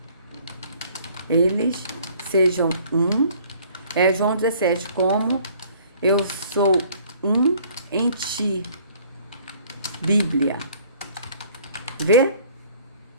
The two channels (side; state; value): both; inverted; correlation -0.56